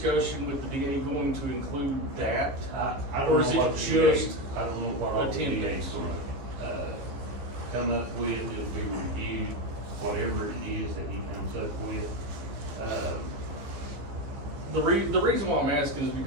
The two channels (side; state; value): left; late; 15 ms